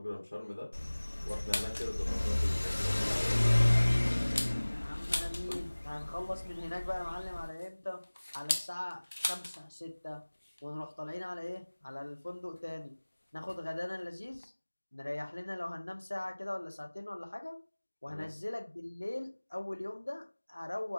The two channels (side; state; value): both; inverted; correlation -1.00